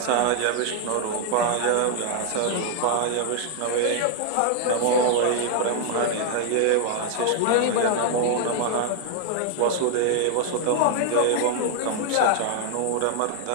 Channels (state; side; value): different; both; correlation 0.00